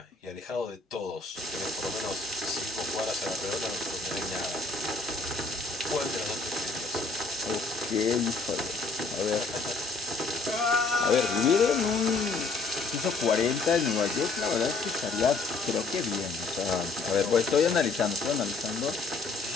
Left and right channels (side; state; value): right; quieter; 3.9 dB